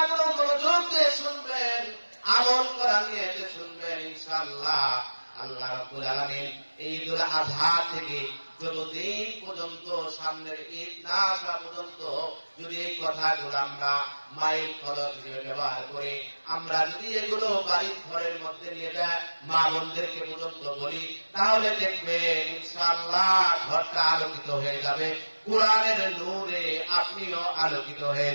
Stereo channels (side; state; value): both; inverted; correlation -1.00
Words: মনোযোগ দিয়ে শুনবেন, আমল করা নিয়ে শুনবেন ইনশাআল্লাহ। আল্লাহ রাব্বুল আলামিন এই ঈদুল আযহা থেকে যতদিন পর্যন্ত সামনের ঈদ না আসা পর্যন্ত যদি এই কথাগুলো আমরা মাইল ফলক হিসেবে ব্যবহার করি, আমরা যদি এগুলো বাড়ির ঘরের মধ্যে নিয়ে যায় মা বোনদেরকে পর্যন্ত বলি, তাহলে দেখবেন ইনশাআল্লাহ ঘরটা আলোকিত হয়ে যাবে। কোরআনের নূরে আপনিও আলোকিত হয়ে